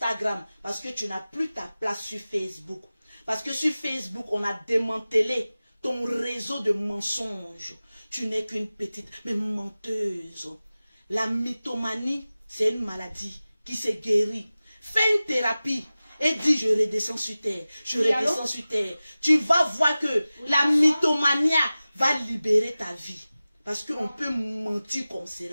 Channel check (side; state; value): both; inverted; correlation -0.96